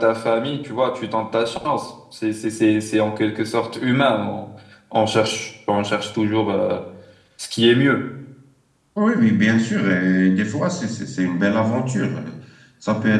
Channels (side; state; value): both; identical; correlation 1.00